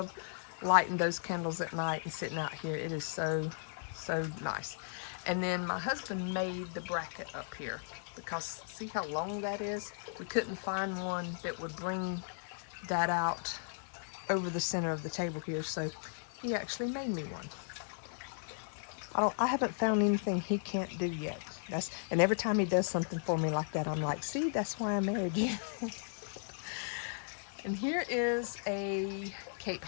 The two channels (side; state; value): right; silent; 54 dB below the other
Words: lighting those candles at night and sitting out here. It is so, so nice. And then my husband made the bracket up here because see how long that is? We couldn't find one that would bring that out over the center of the table here, so he actually made me one. I haven't found anything he can't do yet. And every time he does something for me like that, I'm like, see, that's why I married you. And here is a Cape